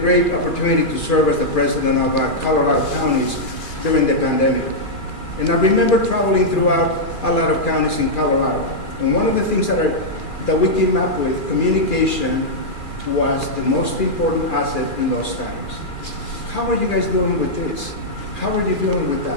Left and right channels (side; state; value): right; late; 2.4 ms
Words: opportunity to serve as the president of Colorado counties during the pandemic. And I remember traveling throughout a lot of counties in Colorado. And one of the things that we came up with, communication was the most important asset in those times. How are you guys dealing with this? How are you dealing with